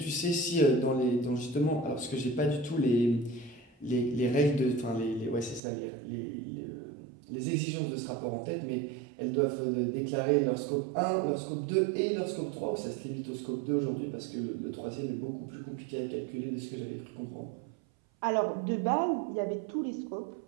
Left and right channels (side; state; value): left; drops out; at 5.6 s